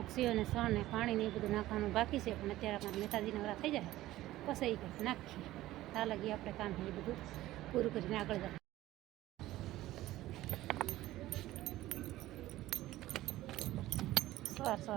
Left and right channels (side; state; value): left; quieter; 15.8 dB